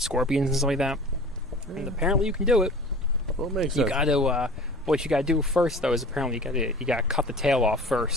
scorpions and stuff like that. And apparently you can do it. Well, it makes you sense. gotta. What you gotta do first though is apparently you gotta cut the tail off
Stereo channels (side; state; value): both; normal; correlation 0.41